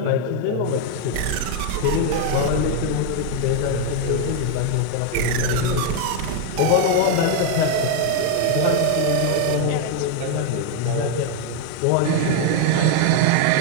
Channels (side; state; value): both; different; correlation 0.00